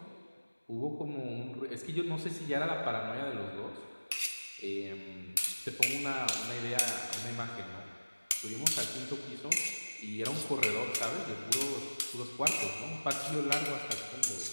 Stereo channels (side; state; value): both; inverted; correlation -1.00